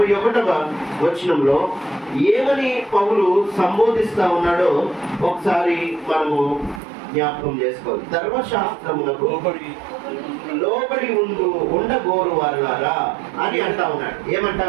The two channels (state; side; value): drops out; left; at 6.8 s